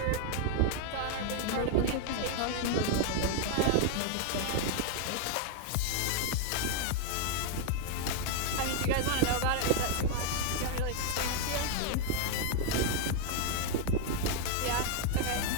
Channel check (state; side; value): different; both; correlation 0.00